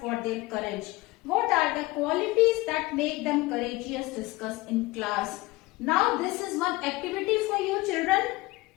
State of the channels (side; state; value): right; quieter; 21.3 dB